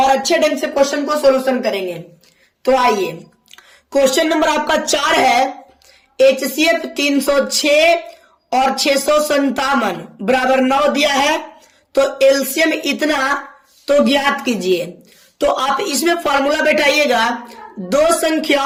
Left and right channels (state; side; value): identical; both; correlation 1.00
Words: अच्छे ढंग से क्वेश्चन को सॉल्यूशन करेंगे। तो आइए, क्वेश्चन नंबर आपका 4 है, HCF 306 और 657 बराबर 9 दिया है, तो एलसीएम इतना तो ज्ञात कीजिए। तो आप इसमें फॉर्मूला बैठाइएगा, दो